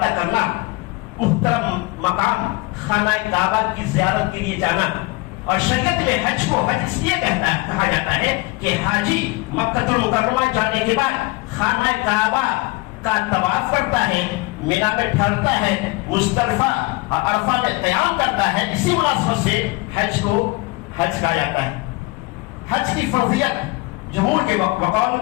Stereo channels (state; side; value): quieter; right; 23.8 dB